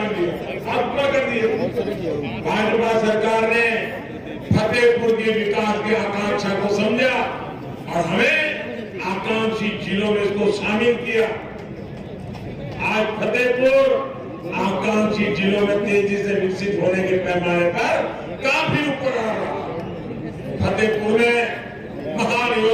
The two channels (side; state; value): both; identical; correlation 1.00